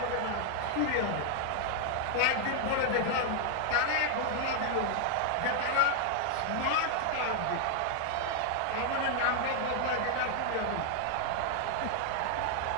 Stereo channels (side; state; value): both; different; correlation 0.00